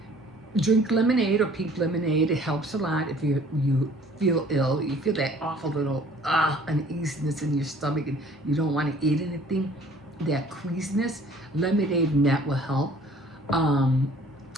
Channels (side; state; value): both; normal; correlation 0.53